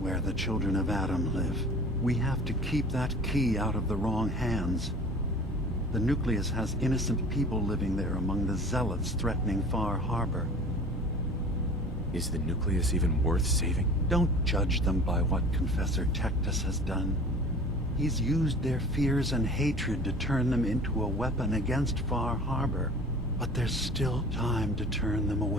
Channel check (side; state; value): both; normal; correlation 0.43